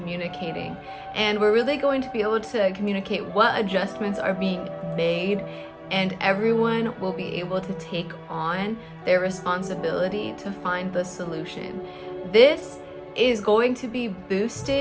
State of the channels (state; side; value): identical; both; correlation 1.00